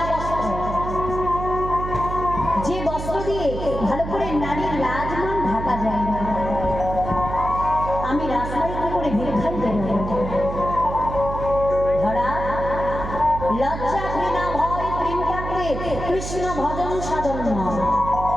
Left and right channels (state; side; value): noise; right; hum, 7 dB below the sound